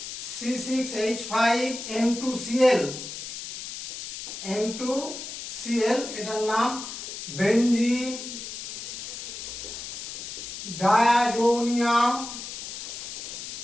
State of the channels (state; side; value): noise; left; hiss, 8 dB below the sound